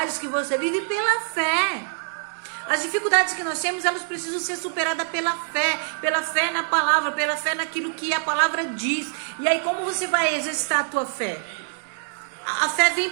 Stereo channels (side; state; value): left; silent; digital silence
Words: que você vive pela fé. As dificuldades que nós temos, elas precisam ser superadas pela fé na palavra, pela fé naquilo que a palavra diz. E aí como você vai exercitar a tua fé? A fé vem